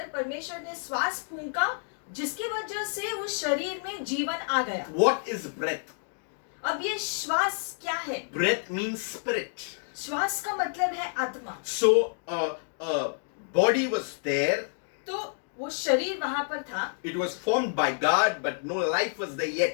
परमेश्वर ने श्वास फूंका, जिसकी वजह से उस शरीर में जीवन आ गया। What is breath? अब ये श्वास क्या है? Breath means spirit. श्वास का मतलब है आत्मा। So body was there. तो वो शरीर वहां पर था, It was formed by God, but no life was there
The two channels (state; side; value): silent; right; digital silence